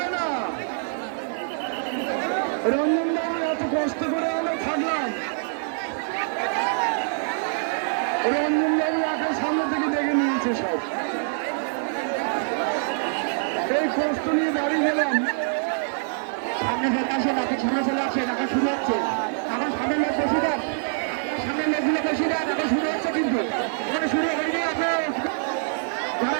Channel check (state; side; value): silent; left; digital silence